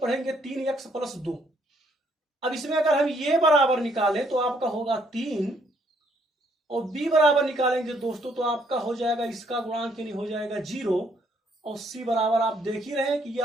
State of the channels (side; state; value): both; normal; correlation 0.68